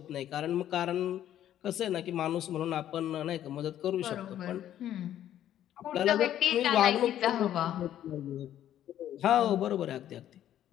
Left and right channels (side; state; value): right; quieter; 11.5 dB